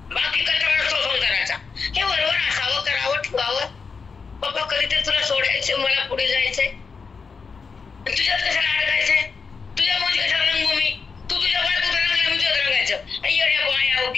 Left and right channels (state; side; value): quieter; right; 5.2 dB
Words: बाकी कचरा नसतो संसाराचा. हे बरोबर असावं, करावं, ठेवावं. बाबा कधीतरी तुला सोडायचंय, मला पुढे जायचंय. तुझ्यात कशाला अडकायचंय, तुझ्या मध्ये कशाला रंगू मी. तू तुझ्या बायकोत रंगला, मी तुझ्यात रंगायचं. येड्या बाया